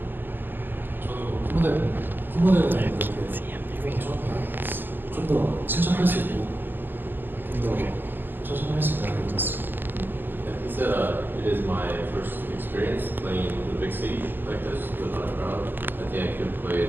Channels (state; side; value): late; left; 0.091 ms